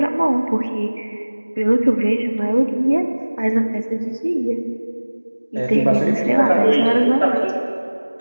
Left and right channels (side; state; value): both; inverted; correlation -1.00